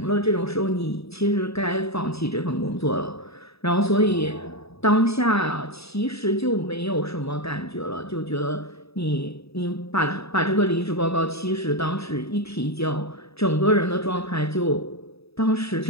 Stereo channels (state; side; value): late; right; 0.78 ms